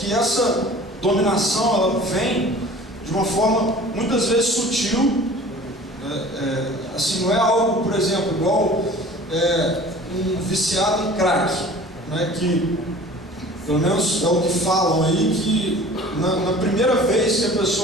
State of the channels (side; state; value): both; normal; correlation 0.44